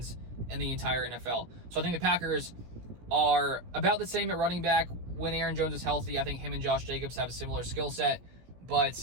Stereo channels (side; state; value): left; late; 17 ms